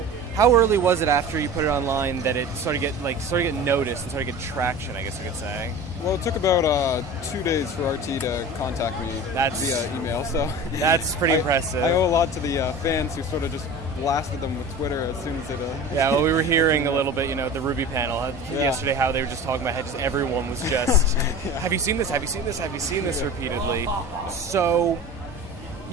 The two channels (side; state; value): both; normal; correlation 0.35